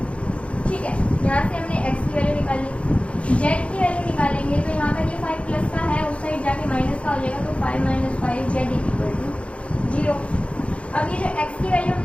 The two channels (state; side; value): late; right; 0.061 ms